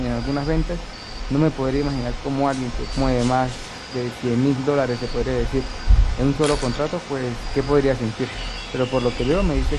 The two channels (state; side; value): identical; both; correlation 1.00